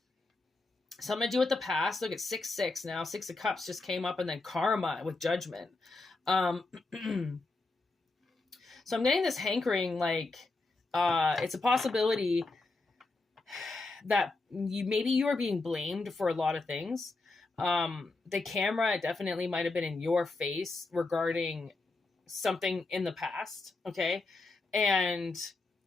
Something to do with the past. Look at 6, 6 now. 6 of Cups just came up, and then Karma with Judgment. So I'm getting this hankering, like, it's a possibility that you are being blamed for a lot of things. The camera definitely might have been in your face regarding something in the past, okay? And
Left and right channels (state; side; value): quieter; right; 3.4 dB